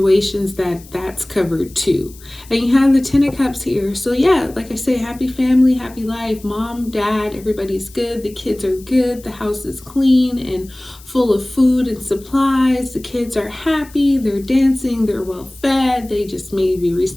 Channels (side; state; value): left; noise; hiss, 22 dB below the sound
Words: that's covered too. And you have the Ten of Cups here. So yeah, like I say, happy family, happy life. Mom, dad, everybody's good. The kids are good. The house is clean and full of food and supplies. The kids are happy. They're dancing. They're well fed. They just maybe